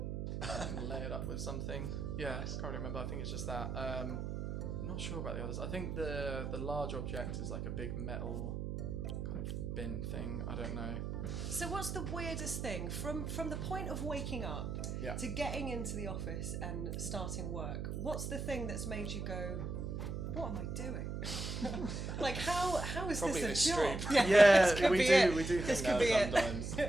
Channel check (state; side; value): noise; right; hum, 4 dB below the sound